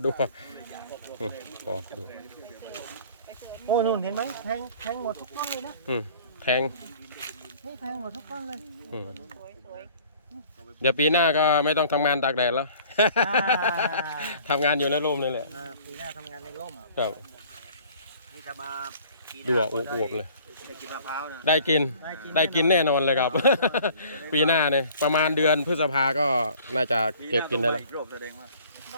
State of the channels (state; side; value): inverted; both; correlation -0.51